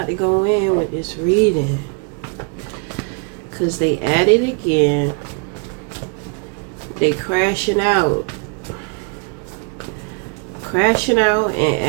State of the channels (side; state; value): left; quieter; 34.4 dB